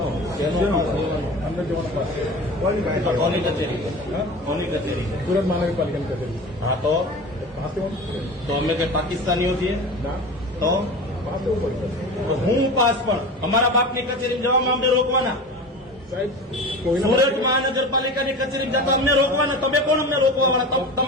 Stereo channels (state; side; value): normal; both; correlation 0.33